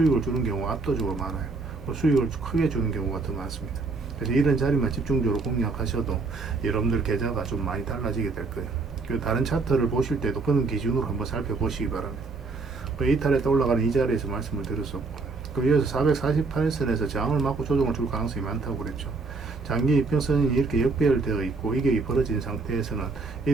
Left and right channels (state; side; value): quieter; left; 4.0 dB